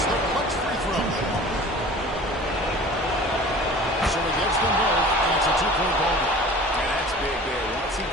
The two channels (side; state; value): both; normal; correlation 0.43